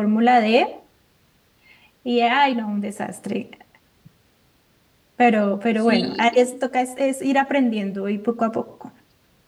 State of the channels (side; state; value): both; identical; correlation 1.00